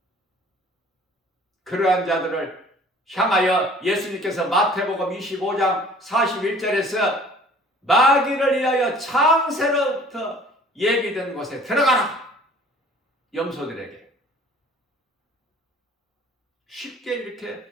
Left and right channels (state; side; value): normal; both; correlation 0.51